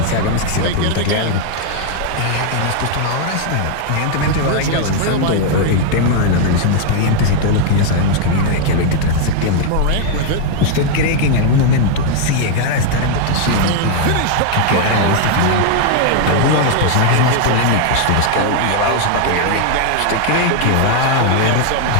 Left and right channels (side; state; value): both; different; correlation 0.00